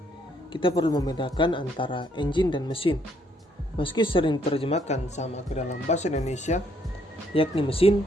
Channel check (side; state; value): both; normal; correlation 0.69